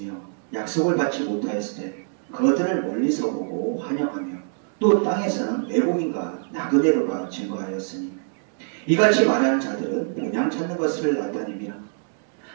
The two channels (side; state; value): left; silent; 62 dB below the other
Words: 약속을 받지 못하였을 때 그것들을 멀리서 보고 환영하며 또 땅에서는 외국인과 나그네로가 증거하였으니 이같이 말하는 자들은 본향 찾는 것을 나타냅니다.